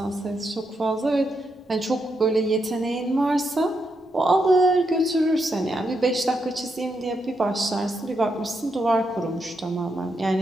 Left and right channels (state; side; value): normal; both; correlation 0.82